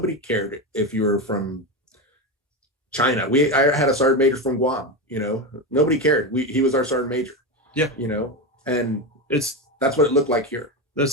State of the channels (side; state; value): both; normal; correlation 0.16